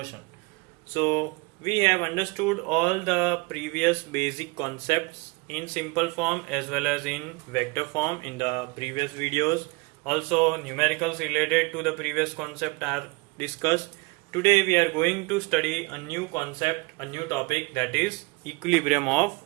So we have understood all the previous basic concepts in simple form as well as in vector form in the previous videos. Also numericals related to the previous concept are discussed. Today we are going to study a new concept, a new topic, that is equilibrium of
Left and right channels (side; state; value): left; quieter; 26.4 dB